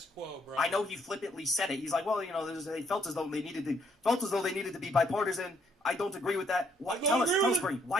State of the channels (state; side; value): normal; both; correlation 0.69